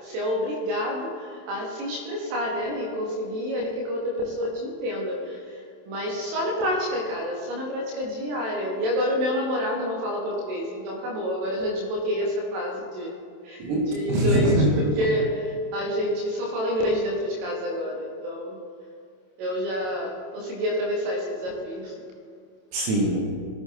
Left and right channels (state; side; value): late; left; 27 ms